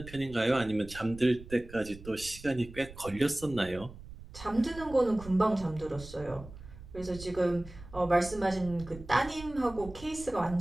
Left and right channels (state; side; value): noise; right; rumble, 16 dB below the sound